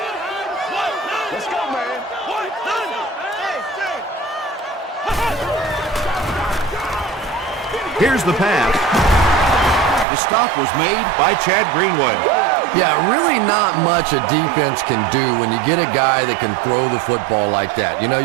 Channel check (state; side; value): drops out; left; at 10.1 s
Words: Here's the pass. The stop was made by Chad Greenway. Yeah, really not much a defense can do when you get a guy that can throw the football like that. You know,